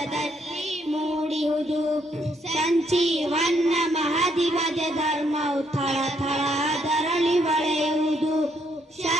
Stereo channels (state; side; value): normal; both; correlation 0.72